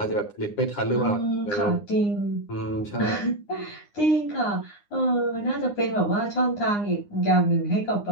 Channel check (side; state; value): right; late; 9.8 ms